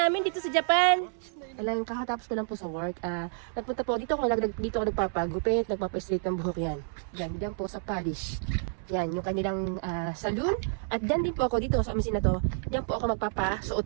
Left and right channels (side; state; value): left; silent; 58 dB below the other